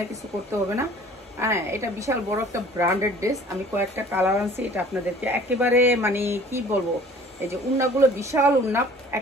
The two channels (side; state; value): both; normal; correlation 0.49